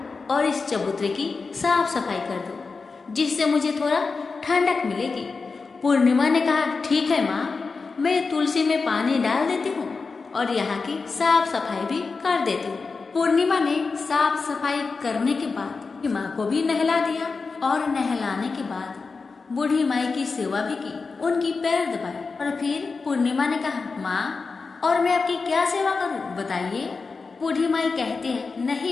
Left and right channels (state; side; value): quieter; right; 4.4 dB